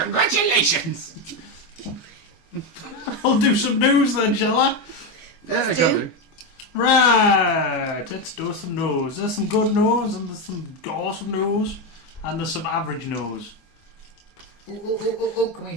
I'll do some news then, shall I? Yeah, I do. can do. Right, let's do some news. There's some good news, and there's some awesome news, and there's some average news. Oh, can we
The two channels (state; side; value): late; right; 24 ms